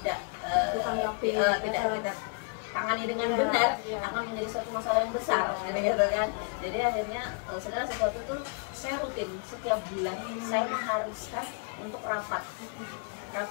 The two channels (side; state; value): right; quieter; 38.5 dB